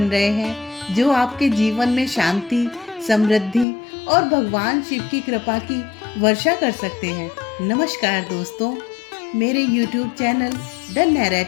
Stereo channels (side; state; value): right; drops out; at 3.7 s